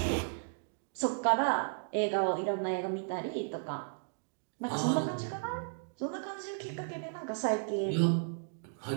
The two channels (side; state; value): left; silent; digital silence